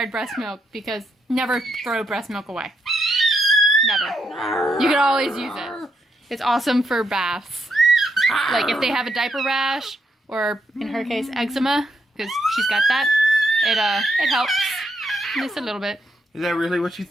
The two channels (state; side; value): normal; both; correlation 0.78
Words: breast milk because never throw breast milk away. Never. You can always use it. It's awesome for baths. Like if they have a diaper rash, or in her case, eczema, because she's got that, it helps just a little bit. Is that really what you